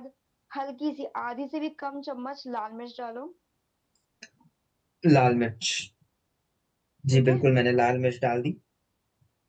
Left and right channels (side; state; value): both; identical; correlation 1.00